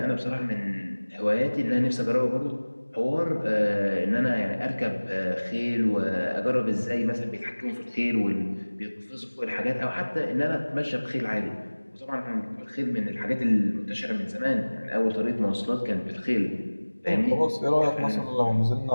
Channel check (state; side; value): inverted; both; correlation -1.00